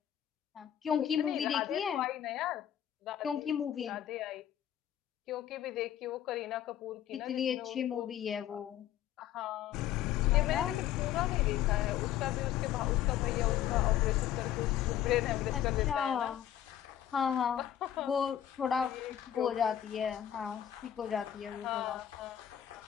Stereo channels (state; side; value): quieter; right; 11.0 dB